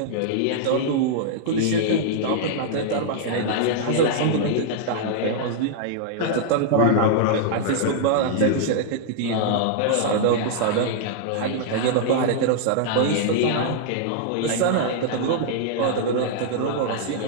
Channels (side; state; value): both; different; correlation -0.01